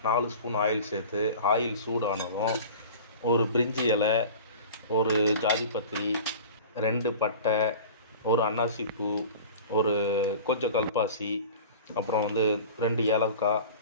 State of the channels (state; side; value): inverted; both; correlation -0.39